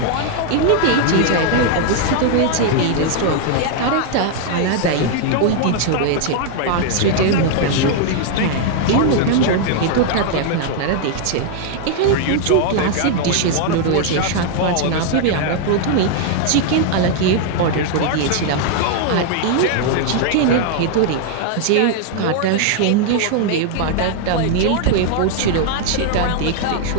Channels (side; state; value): both; different; correlation 0.00